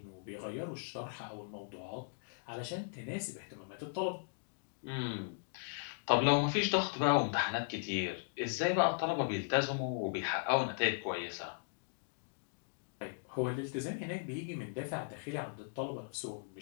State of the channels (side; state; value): right; silent; digital silence